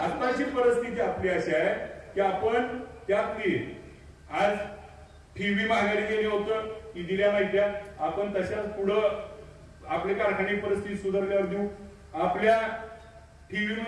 आताची परिस्थिती आपली अशी आहे की आपण त्यातली आज ठेवी माघारी गेली होतं की दिल्या नाही त्या, आपण तशाच पुढं आपली कारखाने परिस्थिती सुधारल्यावर देऊ. आपल्या ठेवी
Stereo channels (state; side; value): identical; both; correlation 1.00